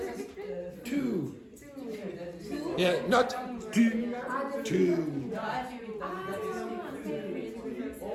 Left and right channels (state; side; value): identical; both; correlation 1.00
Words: Two. Yeah, not two. Two.